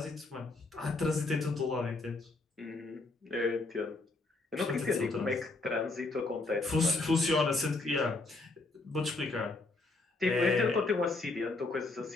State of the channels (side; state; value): right; quieter; 3.4 dB